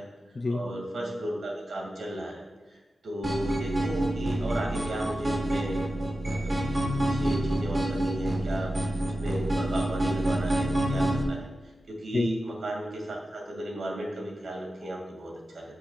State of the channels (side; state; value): both; normal; correlation 0.93